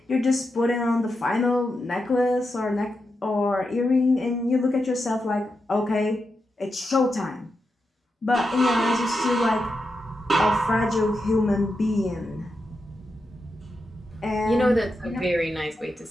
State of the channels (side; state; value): both; normal; correlation 0.87